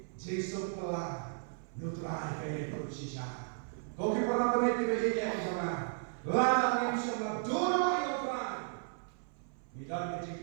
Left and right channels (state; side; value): silent; left; 54 dB below the other